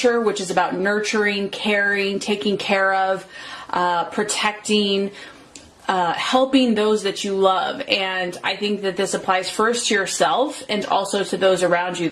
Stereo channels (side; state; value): both; identical; correlation 1.00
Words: which is about nurturing, caring, taking care of, protecting, helping those that you love. And I think that this applies first to yourself and also to those around you.